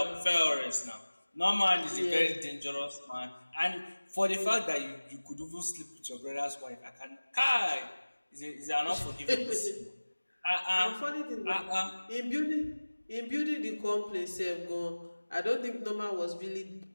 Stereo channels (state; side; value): inverted; both; correlation -1.00